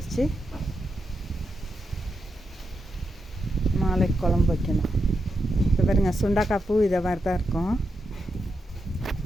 நாளைக்கு குழம்பு வைக்கணும். இப்போ பாருங்க, சுண்டக்காய் பூ இதை மாதிரி தான் இருக்கும்.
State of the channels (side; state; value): both; normal; correlation 0.85